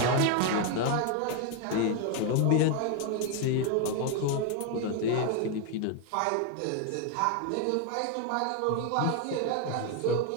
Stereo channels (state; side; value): different; both; correlation 0.01